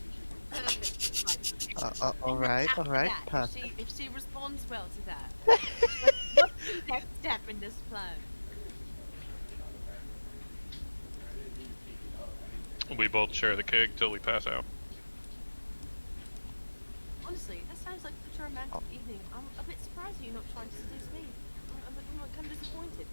Alright, After that, perfect. if she responds well to that, what's the next step in this plan? We both share the keg till we pass out. Honestly, that sounds like such a romantic evening. I'm a bit surprised you're not trying to seduce me. I'm kind of disappointed.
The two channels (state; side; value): inverted; both; correlation -1.00